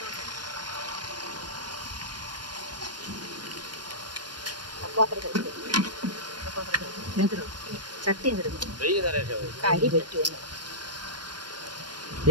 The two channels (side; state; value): left; late; 0.71 ms